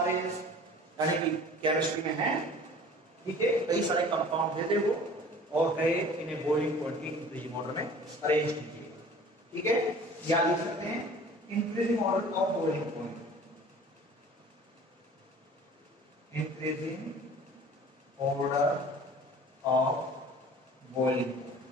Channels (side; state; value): both; normal; correlation 0.46